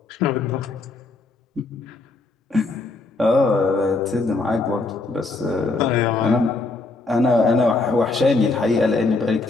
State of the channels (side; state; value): right; quieter; 3.5 dB